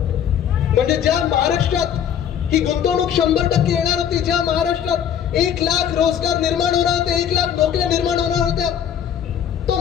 म्हणजे ज्या महाराष्ट्रात ही गुंतवणूक 100% येणार होती, ज्या महाराष्ट्रात 1,00,000 रोजगार निर्माण होणार होते, 1,00,000 नोकऱ्या निर्माण होणार होत्या, तो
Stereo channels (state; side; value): quieter; right; 9.0 dB